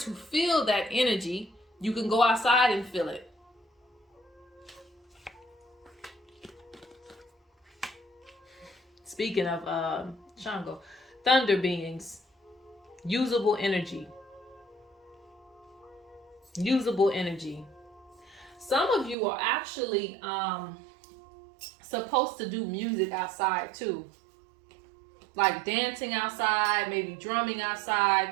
feel that energy, you can go outside and feel it. Speaking of Shango, thunder beings, usable energy. Usable energy. Some of you are actually supposed to do music outside too. Like dancing outside, maybe drumming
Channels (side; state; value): left; drops out; at 19.2 s